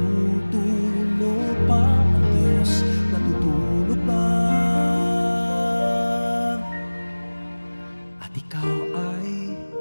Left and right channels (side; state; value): both; inverted; correlation -1.00